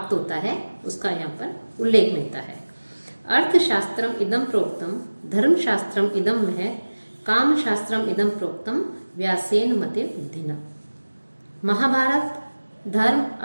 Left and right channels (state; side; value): inverted; both; correlation -1.00